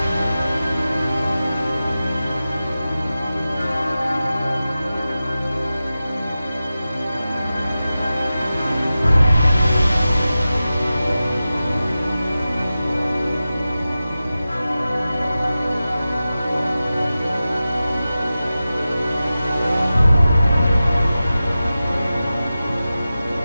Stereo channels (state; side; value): inverted; both; correlation -0.94